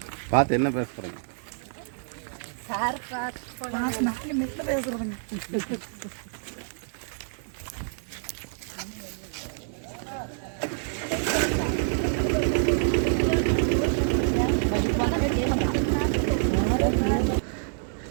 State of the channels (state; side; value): silent; left; digital silence